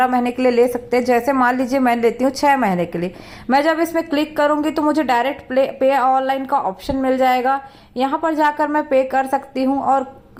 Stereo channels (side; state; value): both; identical; correlation 1.00